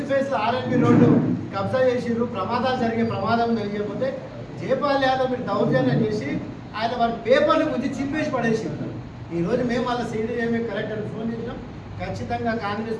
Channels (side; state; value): both; identical; correlation 1.00